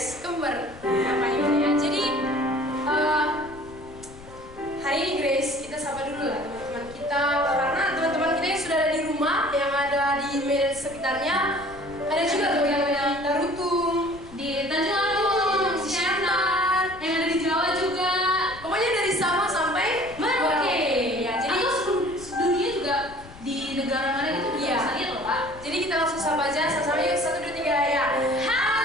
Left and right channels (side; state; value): left; noise; rumble, 19 dB below the sound